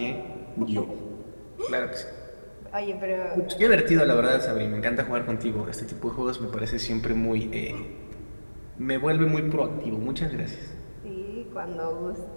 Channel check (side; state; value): both; inverted; correlation -1.00